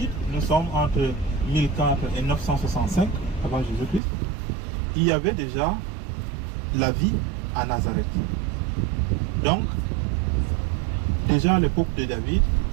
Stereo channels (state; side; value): drops out; left; at 4.0 s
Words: nous sommes entre 1004 et 965 avant Jésus-Christ, il y avait déjà la vie à Nazareth. Donc, déjà à l'époque de David,